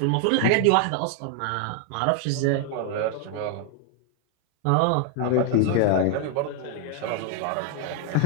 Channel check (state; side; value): different; both; correlation 0.01